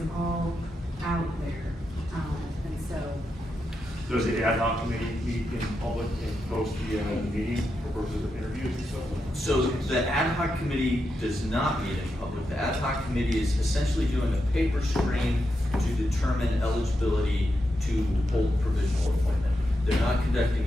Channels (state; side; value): normal; both; correlation 0.86